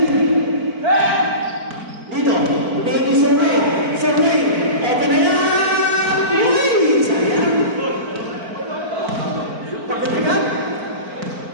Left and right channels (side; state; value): left; late; 4.5 ms